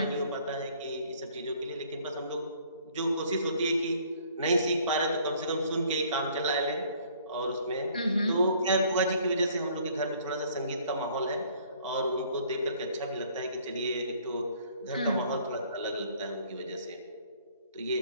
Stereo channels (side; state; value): both; inverted; correlation -0.58